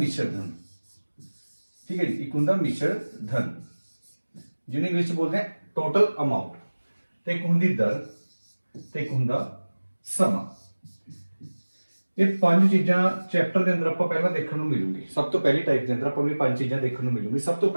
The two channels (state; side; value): inverted; both; correlation -1.00